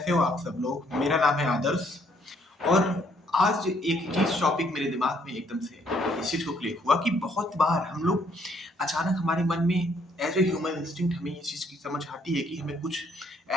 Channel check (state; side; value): normal; both; correlation 0.68